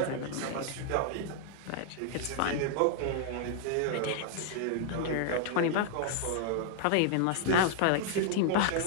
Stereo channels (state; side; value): different; both; correlation 0.00